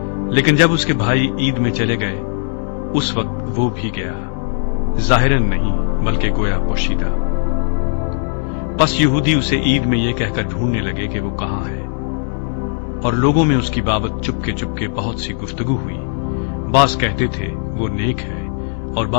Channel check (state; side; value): silent; right; 65 dB below the other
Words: لیکن جب اس کے بھائی عید میں چلے گئے، اس وقت وہ بھی گیا، ظاہراً نہیں بلکہ گویا پوشیدہ۔ پس یہودی اسے عید میں یہ کہہ کر ڈھونڈنے لگے کہ وہ کہاں ہے، اور لوگوں میں اس کی بابت چپ کے بہت سی گفتگو ہوئی۔ بعض کہتے تھے وہ نیک ہے، اور